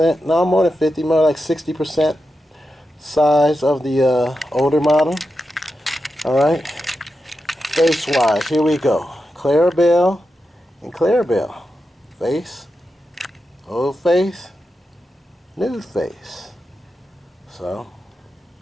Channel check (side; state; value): both; normal; correlation 0.89